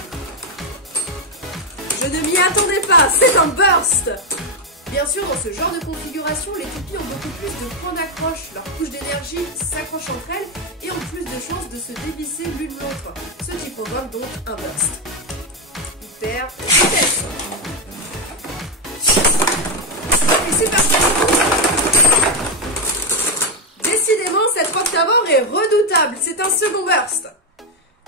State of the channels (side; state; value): both; normal; correlation 0.05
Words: Je ne m'y attendais pas, c'est un burst. Bien sûr, dans ce genre de configuration, les toupies ont beaucoup plus de points d'accroche. Leurs couches d'énergie s'accrochent entre elles et ont plus de chances de se dévisser l'une l'autre, ce qui provoque donc un burst. Hyper vitesse. Et c'est parti. Décidément, cette Roctavor est redoutable. C'est un second burst.